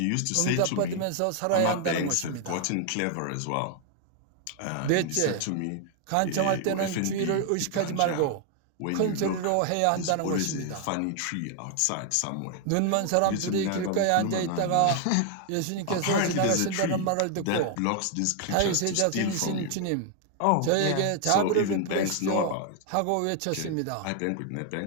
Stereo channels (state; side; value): different; both; correlation 0.00